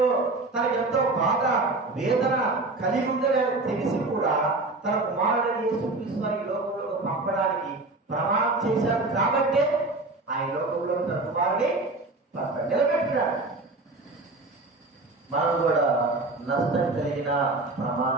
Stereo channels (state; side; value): quieter; left; 3.1 dB